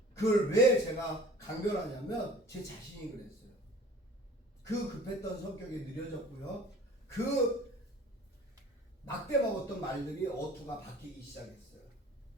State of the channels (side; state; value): both; normal; correlation 0.46